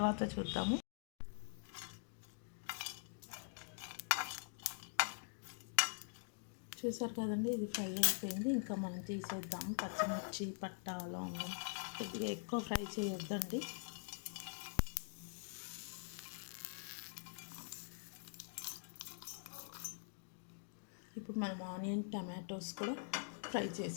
చూద్దాము. చూసారు కదండి, ఇది ఫ్రై అయిపోయింది. ఇంకా మనం తీసేద్దాము. పచ్చిమిర్చి, పట్ట, లవంగం కొద్దిగా ఎక్కువ ఫ్రై చేయొద్దండి. ఇప్పుడు మనం ఆనియన్, టమాటోస్ కూడా ఫ్రై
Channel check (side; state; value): right; silent; digital silence